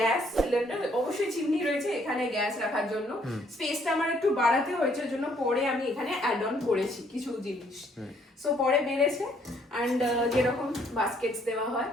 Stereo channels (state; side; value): normal; both; correlation 0.66